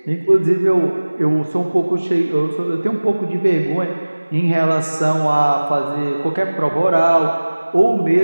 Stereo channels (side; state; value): both; inverted; correlation -1.00